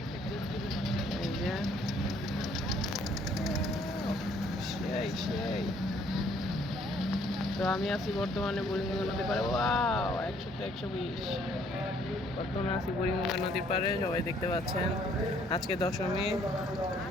এই যে সেই তো আমি আছি বর্তমানে বুড়িগঙ্গা নদীর পাড়ে। 100-তে 120, বর্তমানে আছি বুড়িগঙ্গা নদীর পাড়ে। সবাই দেখতে পাচ্ছেন, আজকে দশমী,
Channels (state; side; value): normal; both; correlation 0.63